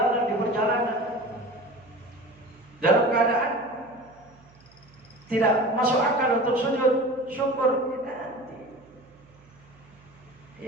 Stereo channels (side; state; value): right; noise; hum, 27 dB below the sound